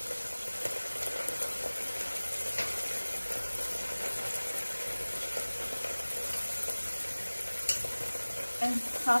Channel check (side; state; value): both; inverted; correlation -1.00